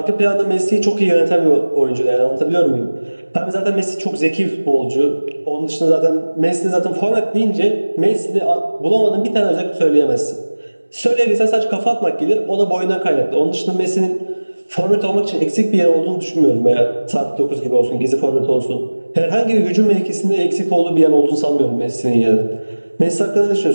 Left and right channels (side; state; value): both; inverted; correlation -1.00